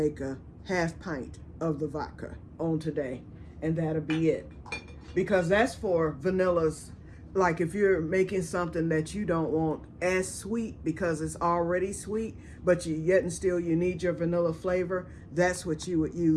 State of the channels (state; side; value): identical; both; correlation 1.00